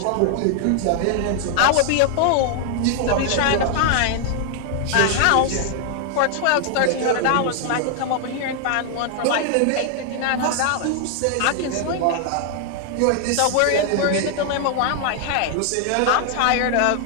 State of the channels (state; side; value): different; both; correlation 0.00